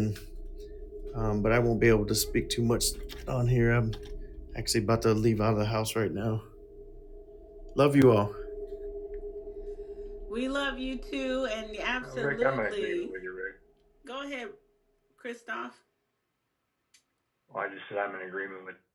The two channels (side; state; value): both; identical; correlation 1.00